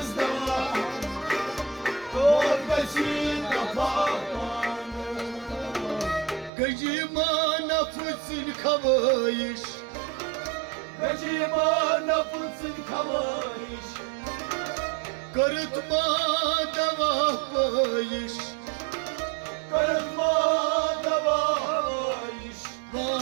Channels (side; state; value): left; drops out; at 6.5 s